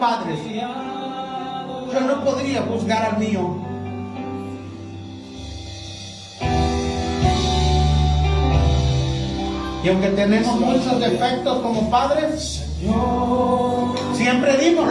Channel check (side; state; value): both; identical; correlation 1.00